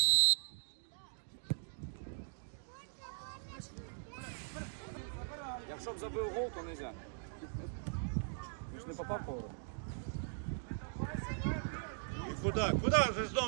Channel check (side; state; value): left; silent; digital silence